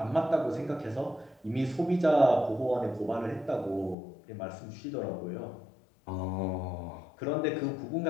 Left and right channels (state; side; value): drops out; right; at 4.0 s